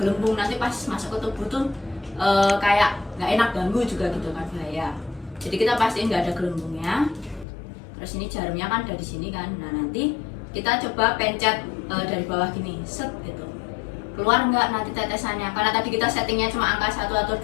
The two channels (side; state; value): right; drops out; at 7.5 s